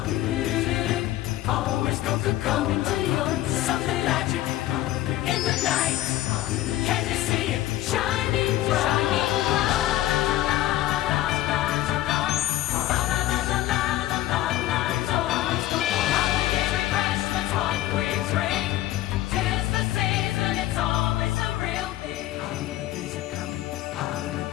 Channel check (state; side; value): quieter; right; 14.9 dB